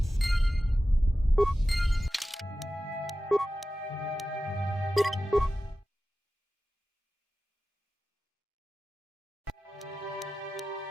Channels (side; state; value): both; normal; correlation 0.94